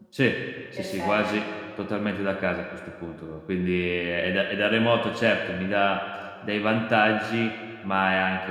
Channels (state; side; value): identical; both; correlation 1.00